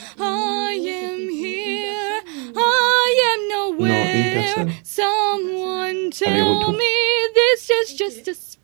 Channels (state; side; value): quieter; left; 36.2 dB